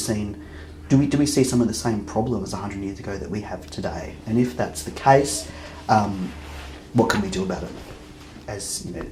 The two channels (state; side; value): identical; both; correlation 1.00